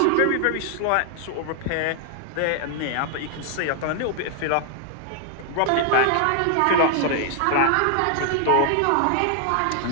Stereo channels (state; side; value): different; both; correlation 0.00